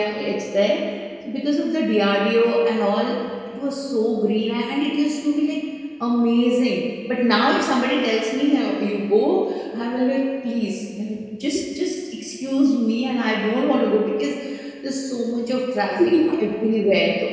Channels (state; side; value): identical; both; correlation 1.00